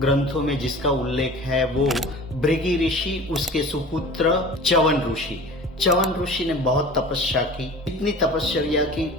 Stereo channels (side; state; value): both; normal; correlation 0.40